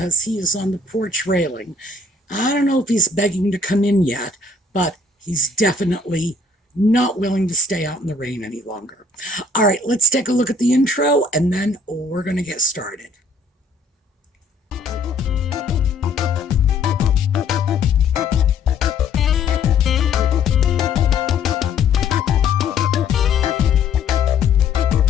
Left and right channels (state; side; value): quieter; right; 3.6 dB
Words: he is on the porch railing. I don't know if he's begging to come in yet, but he's definitely not willing to stay out in the rain any longer. All right, let's take a look at the intro, and then we're going to get started.